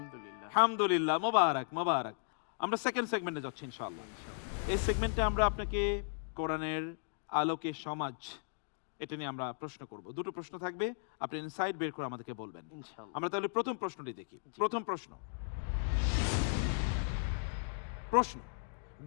আলহামদুলিল্লাহ, মোবারক মোবারক। আমরা সেকেন্ড সেগমেন্টে যাচ্ছি ইনশাআল্লাহ। এই সেগমেন্টে আমরা আপনাকে কোরআনের আলোকে সমাজ, এটা নিয়ে আমরা প্রশ্ন করব। দুটো প্রশ্ন থাকবে, আপনি ইনসাইট বের করে আমাদেরকে বলবেন। ইনশাআল্লাহ। আমরা তাহলে প্রথম প্রশ্নটি দেখি। প্রথম প্রশ্ন,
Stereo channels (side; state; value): right; silent; digital silence